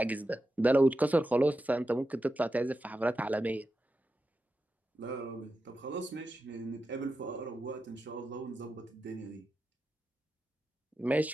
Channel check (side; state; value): both; normal; correlation 0.90